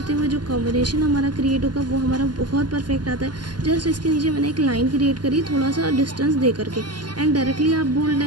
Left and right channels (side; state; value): left; late; 0.71 ms